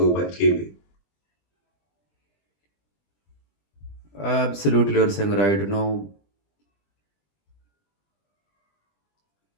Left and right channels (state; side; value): late; right; 20 ms